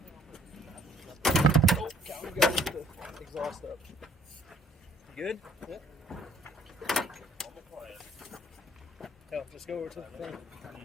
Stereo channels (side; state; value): both; normal; correlation 0.59